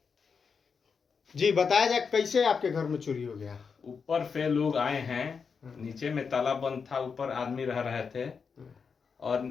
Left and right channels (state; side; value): quieter; right; 5.7 dB